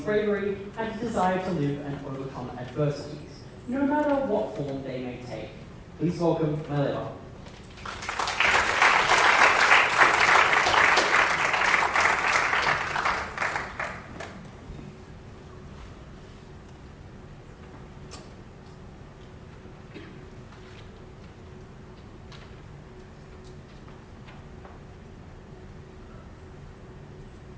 bravery and a desire to live and overcome adversities, no matter what form they may take. Please welcome Maleva.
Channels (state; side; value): identical; both; correlation 1.00